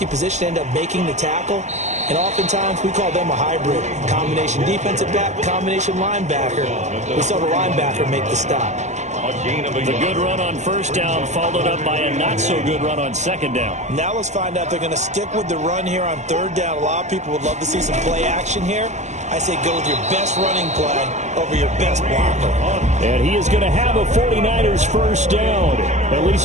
position ended up making the tackle, and oftentimes we call them a hybrid. Combination defensive back, combination linebacker. We saw the linebacker make the stop. The good run on first down followed up by a not-so-good run on second down. Now let's find out if they're going to stick with the run here on third down. A lot of people would love to see some play action here. I say go with your best running play over your best blocker. And he is going to have a 49ers first down. At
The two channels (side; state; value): left; late; 0.34 ms